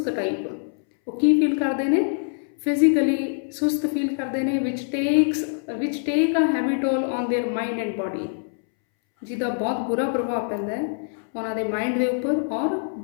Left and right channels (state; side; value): silent; right; 62 dB below the other